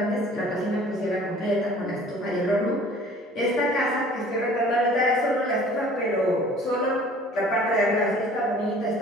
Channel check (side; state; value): both; normal; correlation 0.50